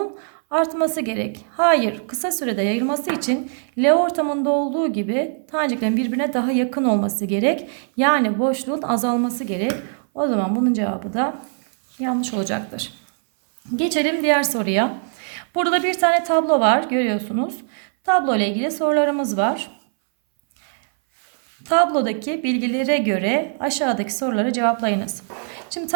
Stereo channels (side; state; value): left; silent; 61 dB below the other